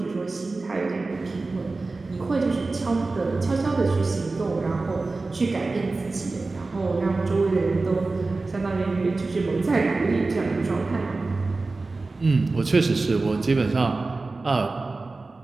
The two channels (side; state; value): left; quieter; 3.6 dB